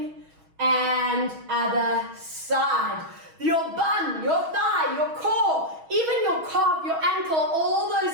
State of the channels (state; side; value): late; left; 6.3 ms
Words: And other side. Your bum, your thigh, your core, even your calf, your ankle, all those